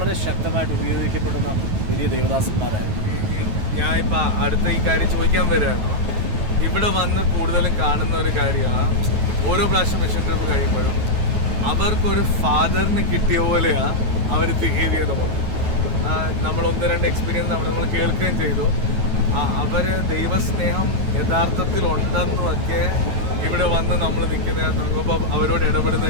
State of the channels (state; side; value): late; left; 9.3 ms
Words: ശക്തമായിട്ട് ഉപയോഗിക്കപ്പെടുന്ന വലിയ ദേവദാസന്മാരായിരുന്നു. ഞാൻ ഇപ്പം അടുത്ത ഈ കാര്യം ചോദിക്കാൻ വരികയാണ്. ഇവിടെ വന്ന് കൂടുതലും കാണുന്ന ഒരു കാര്യമാണ്, ഓരോ പ്രാവശ്യം മിഷൻ ട്രിപ്പ് കഴിയുമ്പോഴും അവർക്കൊരു ഫാദറിന് കിട്ടിയ പോലെയാണ് അവർ ബിഹേവ് ചെയ്ത് പോകുന്നത്. നമ്മൾ 1-2 എക്സ്പീരിയൻസ് നമ്മൾ കേൾക്കുകയും ചെയ്തു. അവർ ദൈവസ്നേഹം യഥാർത്ഥത്തിൽ ഉണ്ടെന്നുമൊക്കെ ഇവിടെ വന്ന് നമ്മൾ നിൽക്കുന്ന അവരോട് ഇടപെടുന്ന